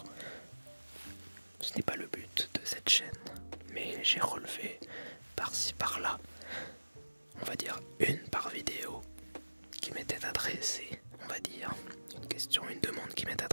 ce n'est pas le but de cette chaîne, mais j'ai relevé par-ci par-là, on va dire une par vidéo, qui m'était adressée, on va dire, une question, une demande qui m'est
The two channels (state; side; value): inverted; both; correlation -1.00